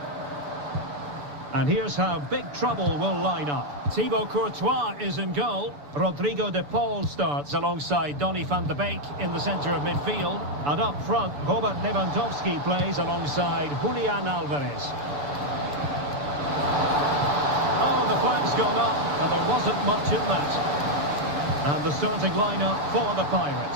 And here's how big trouble will line up. Thibaut Courtois is in goal. Rodrigo de Paul starts alongside Donny van de Beek in the centre of midfield. And up front, Robert Lewandowski plays alongside Julian Alvarez. Oh, the flag's gone up, and there wasn't much in that. And the starting lineup for the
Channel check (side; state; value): left; late; 6.9 ms